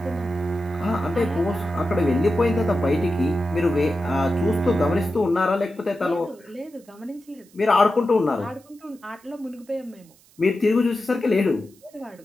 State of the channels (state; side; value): noise; right; hiss, 29 dB below the sound